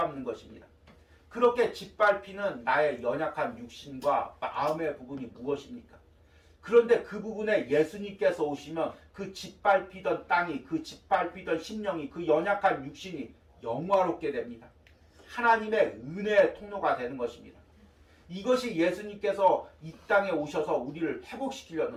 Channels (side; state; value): both; identical; correlation 1.00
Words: 것입니다. 그렇게 짓밟히는 나의 연약한 육신과 마음의 부분이 무엇입니까? 그런데 그 부분에 예수님께서 오시면 그 짓밟히던 땅이, 그 짓밟히던 심령이, 그 연약한 육신이 영화롭게 됩니다. 하나님의 은혜의 통로가 되는 것입니다. 이것이 예수님께서 이 땅에 오셔서 우리를